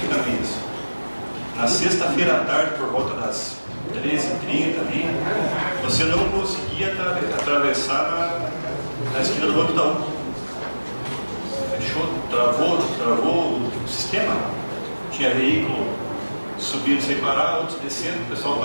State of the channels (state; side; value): inverted; both; correlation -1.00